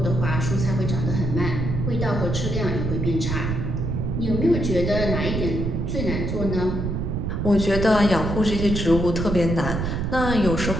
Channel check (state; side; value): noise; right; rumble, 2 dB below the sound